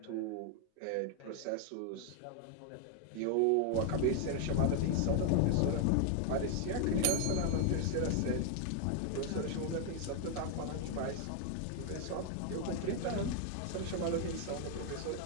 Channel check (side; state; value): both; different; correlation 0.00